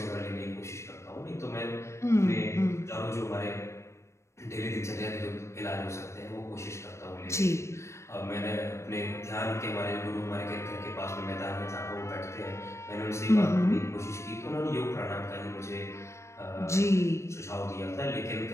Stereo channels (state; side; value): late; right; 0.13 ms